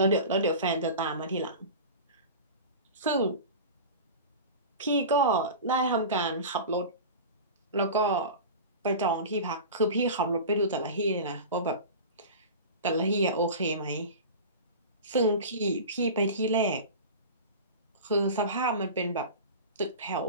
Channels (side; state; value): both; inverted; correlation -0.32